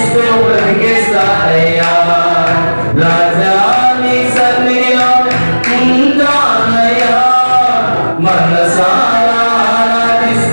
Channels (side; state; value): both; inverted; correlation -1.00